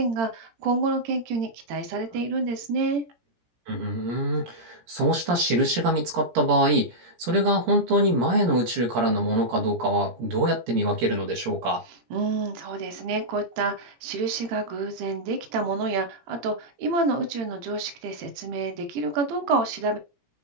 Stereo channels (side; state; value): left; late; 17 ms